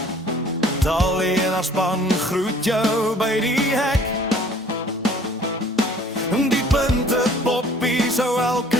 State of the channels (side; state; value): both; normal; correlation 0.53